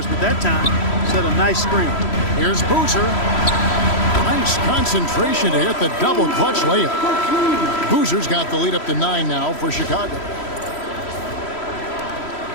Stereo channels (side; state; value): right; late; 3.1 ms